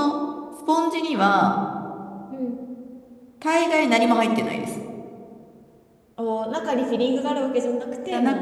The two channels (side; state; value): both; identical; correlation 1.00